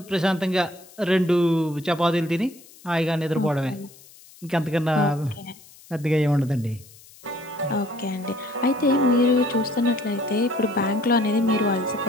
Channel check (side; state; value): left; noise; hiss, 23 dB below the sound